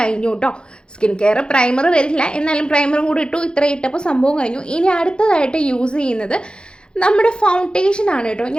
കേട്ടോ. സ്കിൻ കെയർ പ്രൈമർ വരില്ല, എന്നാലും പ്രൈമറും കൂടി ഇട്ടു. ഇത്ര ഇട്ടപ്പോൾ സംഭവം കഴിഞ്ഞു. ഇനി അടുത്തതായിട്ട് യൂസ് ചെയ്യുന്നത് നമ്മുടെ ഫൗണ്ടേഷനാണ് കേട്ടോ.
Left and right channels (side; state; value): right; late; 0.050 ms